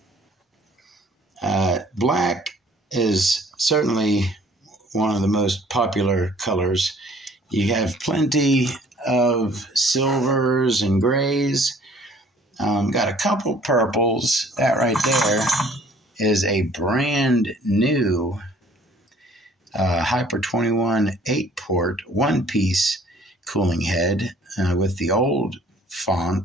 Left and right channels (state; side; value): normal; both; correlation 0.56